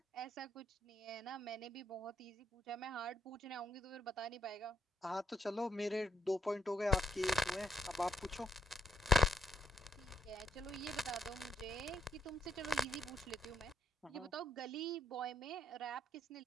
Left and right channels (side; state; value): both; normal; correlation 0.71